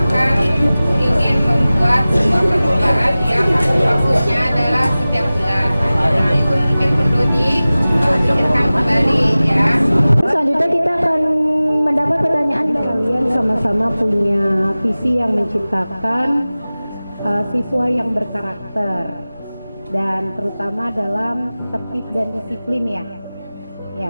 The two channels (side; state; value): both; inverted; correlation -0.97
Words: membuat sebuah perlombaan yang maksudnya adalah setiap bulan. Nah, itu mungkin perlu dipikirkan kembali ya. Selanjutnya kita akan mendapat pertanyaan dari Kalian sama-sama punya visi yang menciptakan siswa yang berkarakter dan terutama dalam tertib dan disiplin ya.